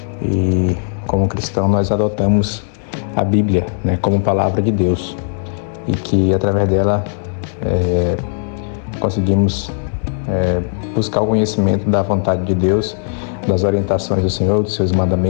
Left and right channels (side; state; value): right; silent; 68 dB below the other